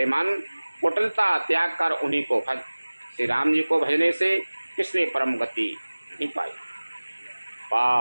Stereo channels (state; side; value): inverted; both; correlation -1.00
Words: मन, कुटिलता त्याग कर उन्हीं को भज। श्री राम जी को भजने से किसने परम गति नहीं पाई।